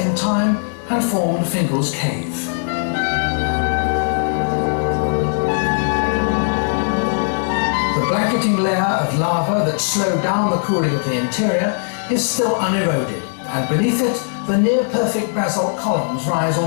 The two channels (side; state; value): right; silent; digital silence